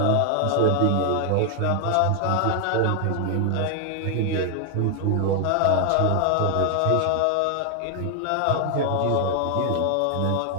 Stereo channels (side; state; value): both; different; correlation 0.00